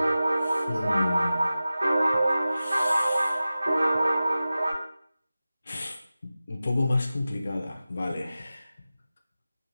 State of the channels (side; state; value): both; inverted; correlation -0.95